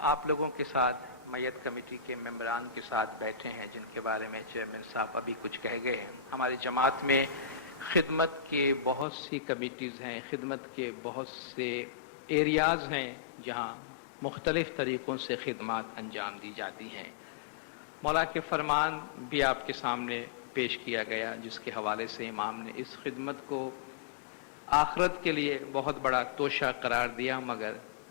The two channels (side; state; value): right; drops out; at 9.1 s